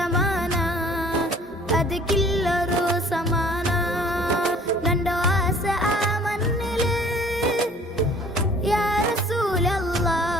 അത് കില്ലറു സമാന നണ്ടോ ആസ ആ മണ്ണില് യാ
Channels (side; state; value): both; normal; correlation 0.52